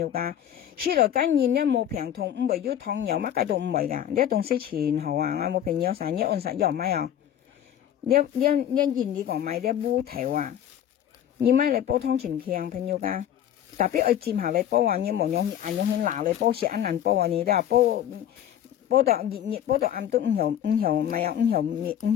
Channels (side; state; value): right; quieter; 10.4 dB